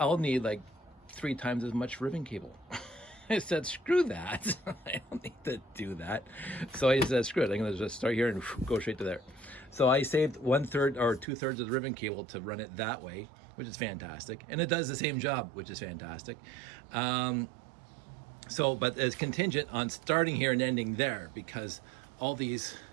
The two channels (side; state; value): left; drops out; at 11.2 s